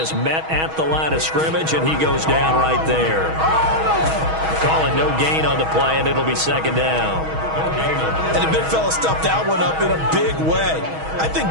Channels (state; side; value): late; left; 6.3 ms